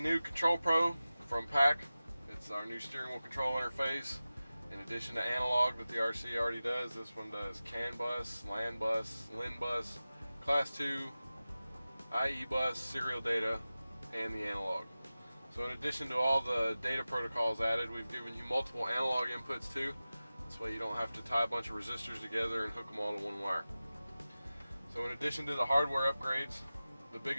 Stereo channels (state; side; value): inverted; both; correlation -0.96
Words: new Control Pro from PAC. It's our new steering wheel control interface. In addition to analog that the RC already does, this one does CAN bus, LAN bus, LIN bus, Class 2, IE bus, serial data, and the analog. So in addition to all the data protocols added, we've given you multiple analog inputs too. This way you don't have to tie a bunch of resistors together and hook them all to one wire. So in addition to the hardware upgrades, the